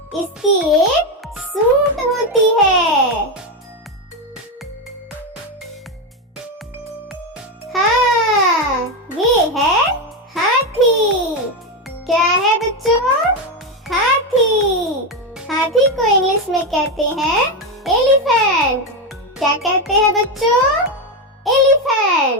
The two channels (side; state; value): both; normal; correlation 0.10